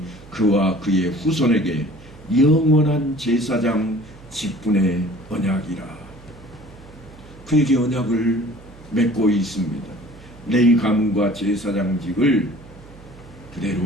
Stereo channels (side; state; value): right; noise; hum, 21 dB below the sound